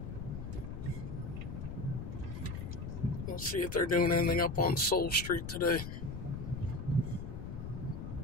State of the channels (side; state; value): left; noise; rumble, 7 dB below the sound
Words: We'll see if they're doing anything up on Soul Street today.